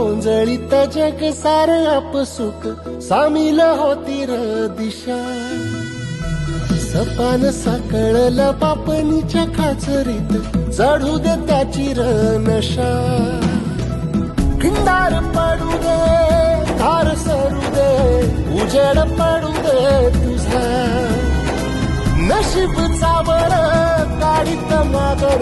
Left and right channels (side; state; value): both; identical; correlation 1.00